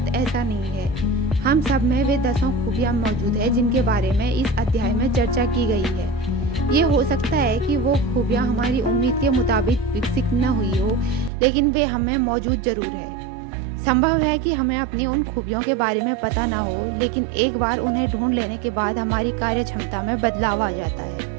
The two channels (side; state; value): left; drops out; at 11.3 s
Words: ऐसा नहीं है। हम सब में वे 10 खूबियाँ मौजूद है जिनके बारे में इस अध्याय में चर्चा की गई है। ये हो सकता है कि वो खूबियाँ हमारी उम्मीद के मुताबिक विकसित न हुई हो, लेकिन वे हमें मौजूद ज़रूर है। संभव है कि हमें अपनी उन खूबियों के बारे में पता ना हो, लेकिन एक बार उन्हें ढूंढ लेने के बाद हमारी कार्य क्षमता में बदलाव आ जाता